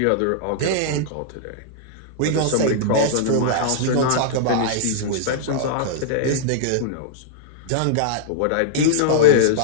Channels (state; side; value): different; both; correlation -0.02